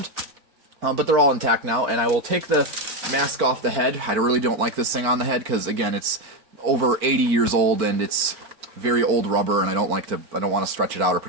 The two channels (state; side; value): late; left; 4.5 ms